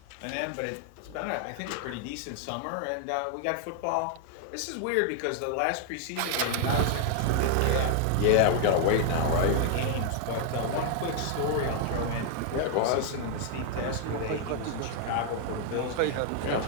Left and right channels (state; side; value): different; both; correlation 0.00